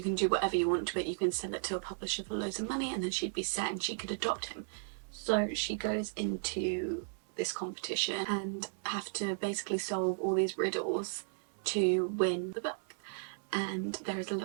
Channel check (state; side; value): silent; left; 55 dB below the other